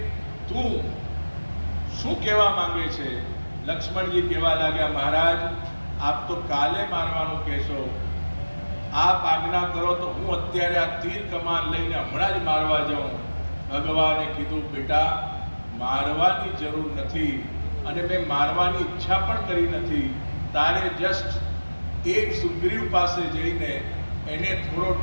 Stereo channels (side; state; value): both; inverted; correlation -1.00